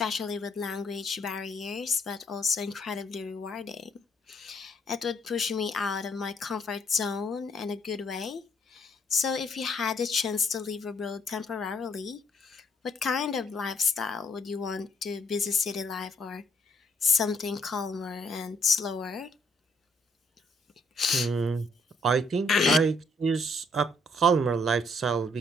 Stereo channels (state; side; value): normal; both; correlation 0.68